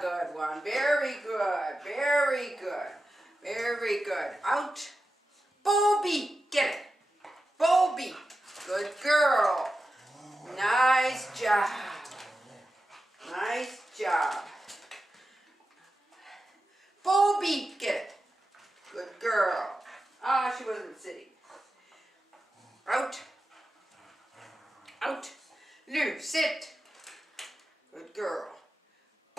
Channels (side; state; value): both; normal; correlation 0.92